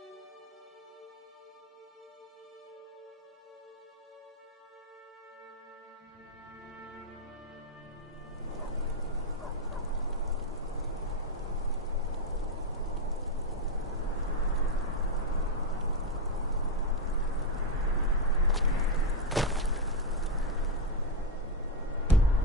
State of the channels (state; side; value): normal; both; correlation 0.05